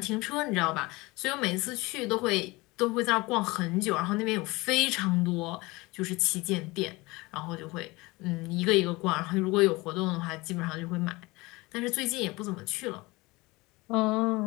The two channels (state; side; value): quieter; right; 22.8 dB